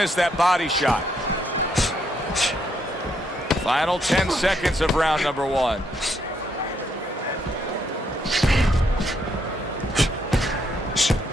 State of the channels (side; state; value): both; normal; correlation 0.74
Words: that body shot. Final 10 seconds of round number one.